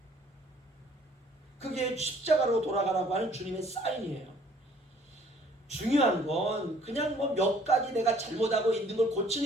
그게 십자가로 돌아가라고 하는 주님의 사인이에요. 중요한 건 그냥 뭐 몇 가지 내가 잘못하고 있는 걸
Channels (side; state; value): both; normal; correlation 0.58